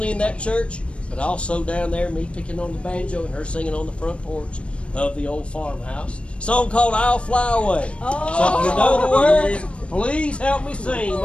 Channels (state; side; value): late; right; 0.060 ms